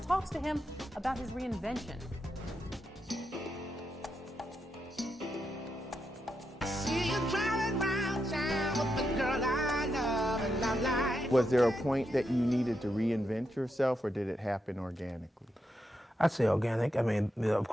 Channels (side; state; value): both; normal; correlation 0.84